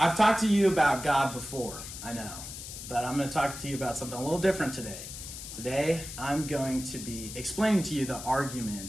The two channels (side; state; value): left; noise; hiss, 10 dB below the sound